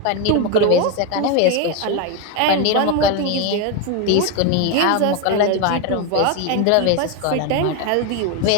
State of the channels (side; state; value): both; different; correlation 0.02